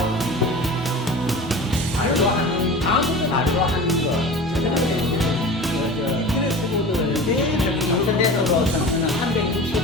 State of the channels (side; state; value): both; normal; correlation 0.35